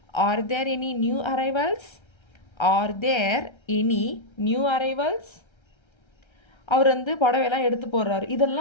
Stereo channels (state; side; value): late; right; 1.3 ms